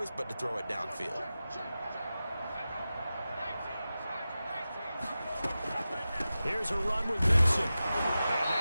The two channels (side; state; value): both; inverted; correlation -0.94